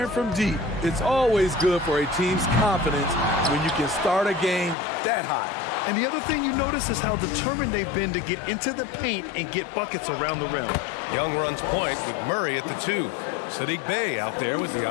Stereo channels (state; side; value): drops out; right; at 4.8 s